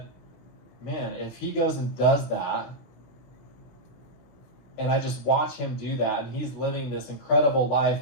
man, if he goes and does that, and I just watch him do that, and he's living this incredible life,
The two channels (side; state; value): right; late; 16 ms